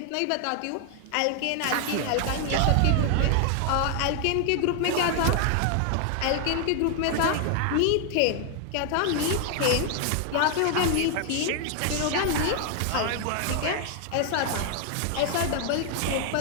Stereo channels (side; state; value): both; different; correlation 0.00